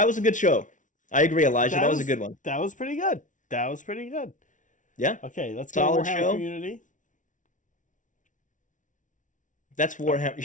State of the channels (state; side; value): late; right; 0.37 ms